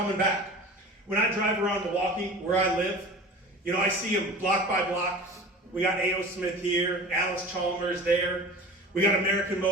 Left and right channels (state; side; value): normal; both; correlation 0.37